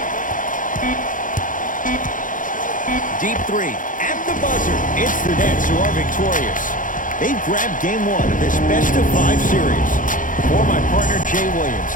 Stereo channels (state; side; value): late; right; 0.38 ms